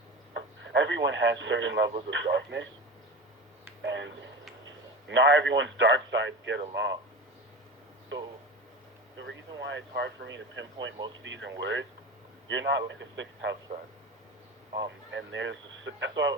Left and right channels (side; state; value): both; normal; correlation 0.28